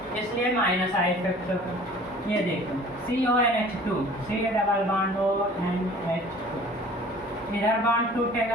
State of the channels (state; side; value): normal; both; correlation 0.48